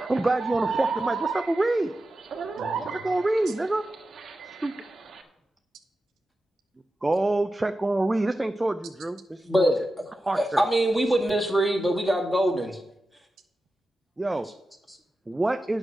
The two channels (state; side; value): normal; both; correlation 0.92